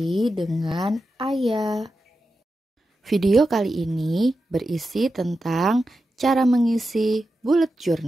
dengan Ayah. Video kali ini berisi tentang cara mengisi bullet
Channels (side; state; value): both; normal; correlation 0.90